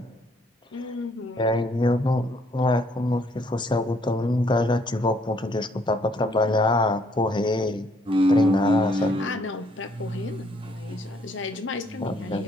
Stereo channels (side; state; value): both; normal; correlation 0.66